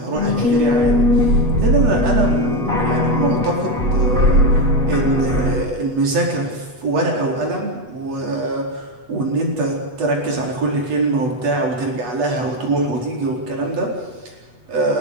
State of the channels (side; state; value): left; late; 8.1 ms